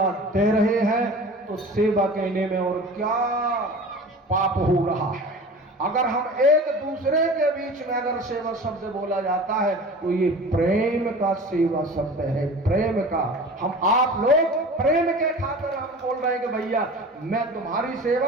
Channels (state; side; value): normal; both; correlation 0.38